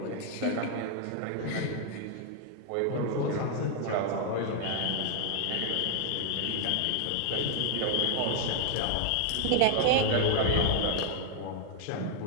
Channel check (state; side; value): different; both; correlation 0.00